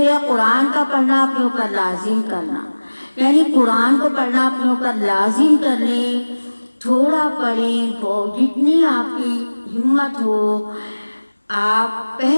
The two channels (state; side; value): inverted; both; correlation -1.00